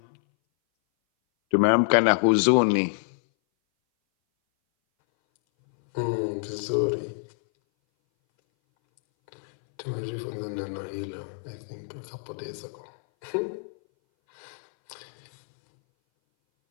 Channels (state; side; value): silent; right; 59 dB below the other